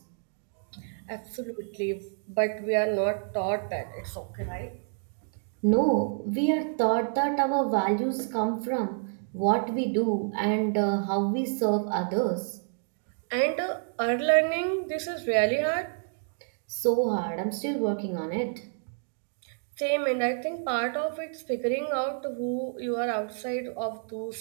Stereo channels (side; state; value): left; silent; digital silence